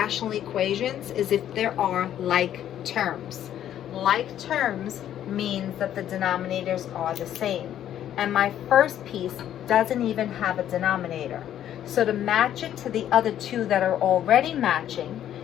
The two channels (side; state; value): right; quieter; 11.0 dB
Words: equations is if there are like terms. Like terms means that the denominators are the same. And my first piece doesn't even have a denominator. So to match it to the other 2 that are already matching,